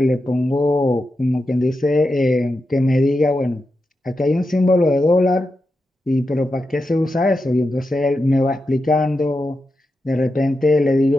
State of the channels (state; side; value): normal; both; correlation 0.89